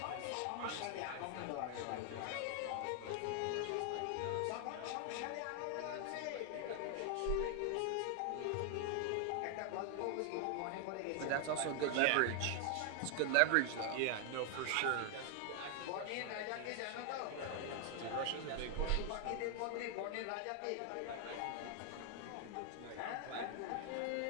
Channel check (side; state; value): both; different; correlation 0.00